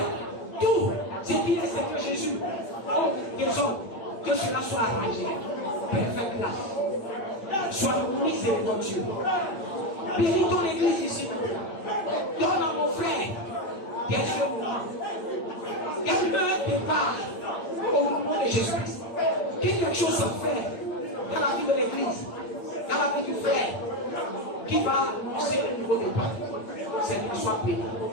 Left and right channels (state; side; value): late; right; 8.7 ms